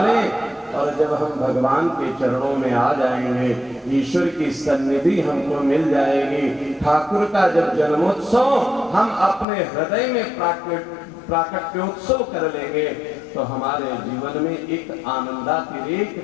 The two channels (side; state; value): right; drops out; at 9.5 s